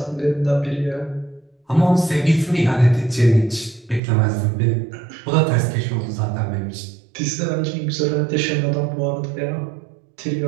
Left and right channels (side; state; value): left; drops out; at 4.0 s